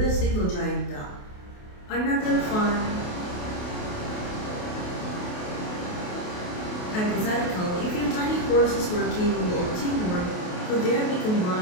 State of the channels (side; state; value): right; late; 28 ms